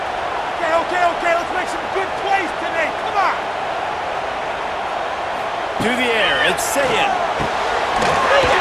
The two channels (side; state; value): both; identical; correlation 1.00